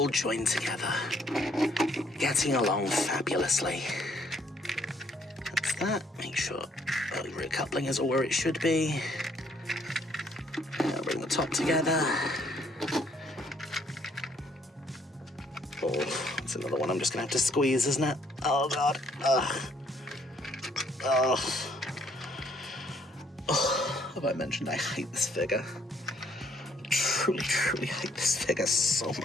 join together. Getting along fabulously. That's that. Make sure the rear coupling is all where it should be. Now bring the top together. Oh, it's another one I'm just going to have to squeeze, isn't it? Oh, God. Ugh. Oh. Oh, have I mentioned I hate this figure? Truly, truly hate this figure so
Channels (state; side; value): normal; both; correlation 0.66